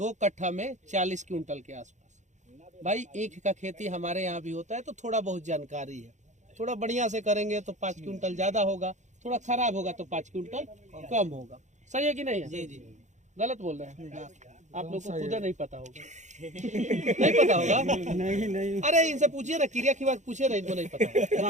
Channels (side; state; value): left; late; 0.35 ms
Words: कट्ठा में 40 क्विंटल के आसपास। भाई ईख का खेती हमारे यहाँ भी होता है, तो थोड़ा बहुत जानकारी है। थोड़ा बढ़िया से करेंगे तो 5 क्विंटल ज्यादा होगा, थोड़ा खराब होगा तो 5 क्विंटल कम होगा। सही है कि नहीं है? जी। गलत बोल रहे हैं आप लोग को? खुद नहीं पता होगा। नहीं पता होगा? नहीं। अरे इनसे पूछिए ना, क्रिया की बात पूछिए ना, इनको नहीं पता।